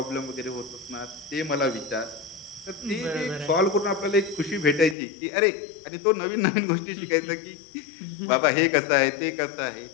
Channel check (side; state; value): right; drops out; at 5.0 s